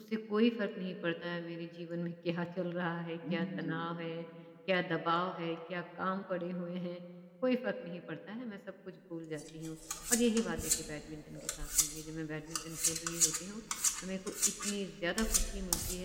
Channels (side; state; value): both; identical; correlation 1.00